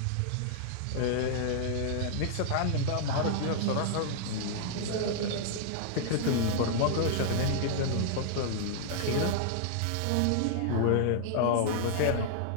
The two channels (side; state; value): both; different; correlation -0.01